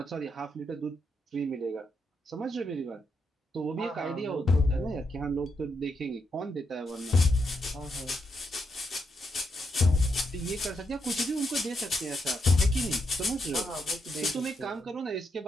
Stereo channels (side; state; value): both; normal; correlation 0.81